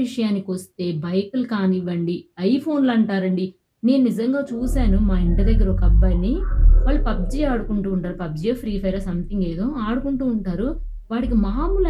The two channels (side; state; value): both; identical; correlation 1.00